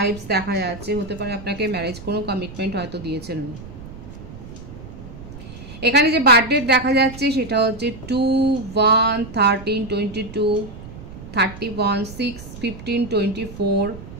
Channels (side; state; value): right; noise; rumble, 14 dB below the sound